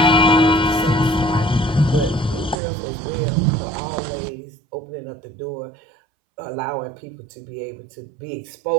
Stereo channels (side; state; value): left; drops out; at 2.6 s